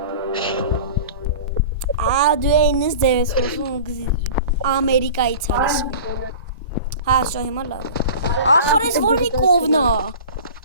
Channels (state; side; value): inverted; both; correlation -0.38